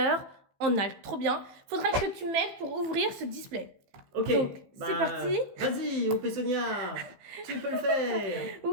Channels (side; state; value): left; late; 15 ms